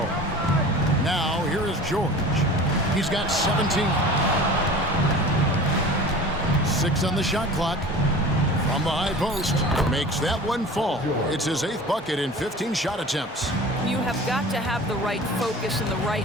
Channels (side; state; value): both; normal; correlation 0.39